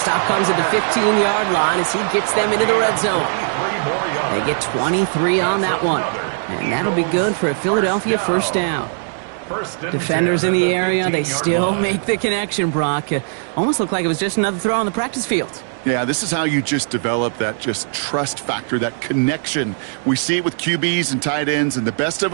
comes at the 15-yard line as he gets them into the red zone. They get 23 on that one. And that'll be good for a Philadelphia 1st down. Defenders in the area, they still make the connection, Brock. Almost looked like it was just another throw on the practice field. Yeah, this is how you just develop that just trust factor, that connection. We see it with QBs and tight ends, and the best of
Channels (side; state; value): left; silent; digital silence